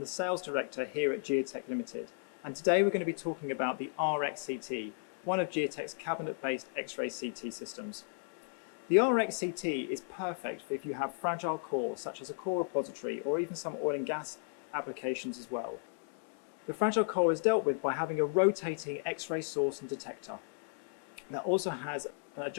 Sales Director here at Geotek Limited, and today we're going to be talking about the RXCT, one of Geotek's cabinet-based X-ray CT systems. The RXCT is perfect for if you have fragile cores such as a core repository or even some oil and gas applications as well. The fragile core is dealt with by having a rotating X-ray source and detector that also has an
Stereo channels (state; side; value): silent; right; digital silence